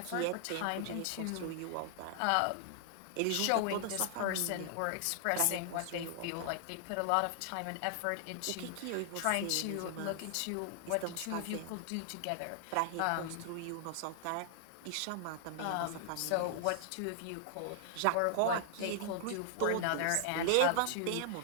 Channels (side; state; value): both; different; correlation 0.00